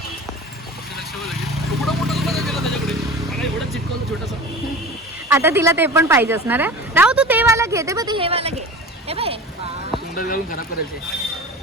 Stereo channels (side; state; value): both; normal; correlation 0.35